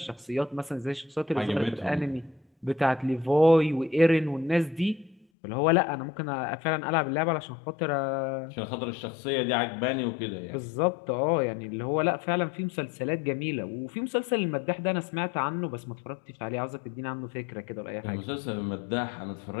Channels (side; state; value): right; drops out; at 5.2 s